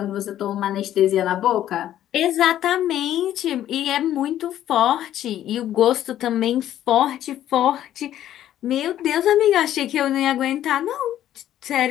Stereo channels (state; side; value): quieter; right; 11.9 dB